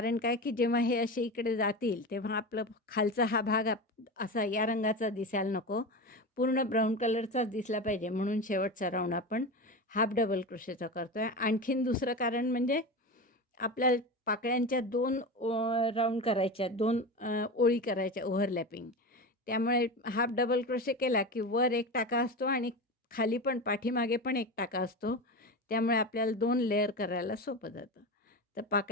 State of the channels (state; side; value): normal; both; correlation 0.24